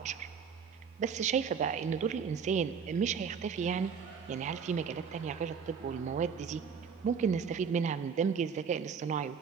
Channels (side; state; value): left; quieter; 6.4 dB